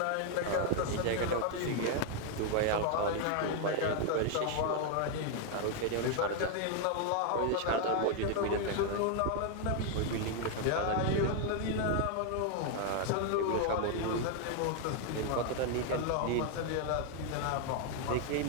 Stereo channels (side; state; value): both; different; correlation 0.00